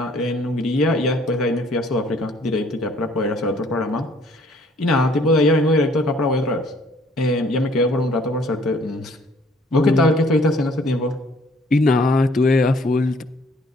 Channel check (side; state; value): both; normal; correlation 0.60